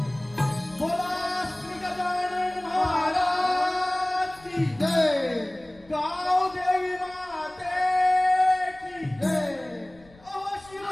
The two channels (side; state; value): left; noise; rumble, 26 dB below the sound